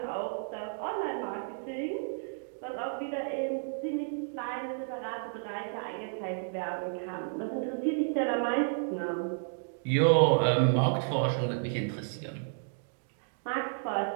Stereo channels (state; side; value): silent; left; digital silence